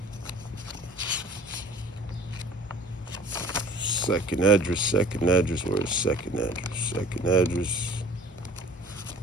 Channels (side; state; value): both; normal; correlation 0.49